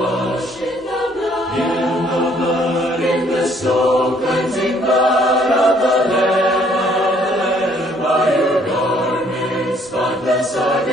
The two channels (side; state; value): both; normal; correlation 0.63